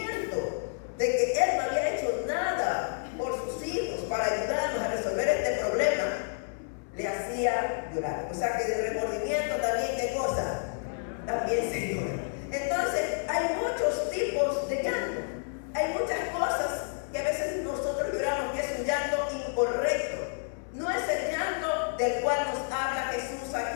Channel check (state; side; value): silent; right; 58 dB below the other